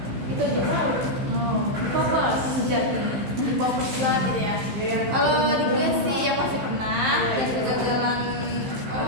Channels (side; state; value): left; late; 15 ms